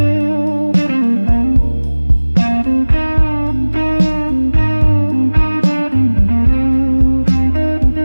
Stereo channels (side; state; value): both; inverted; correlation -1.00